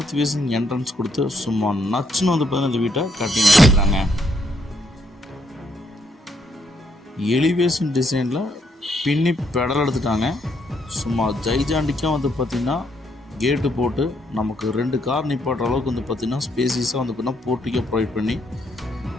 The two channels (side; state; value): both; normal; correlation 0.74